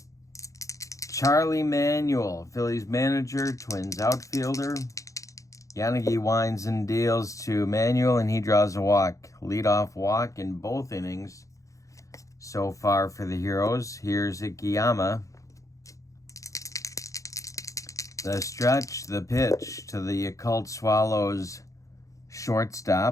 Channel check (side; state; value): right; late; 0.16 ms